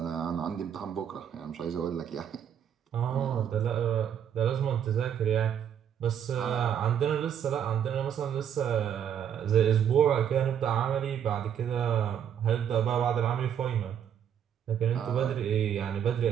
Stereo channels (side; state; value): left; quieter; 9.0 dB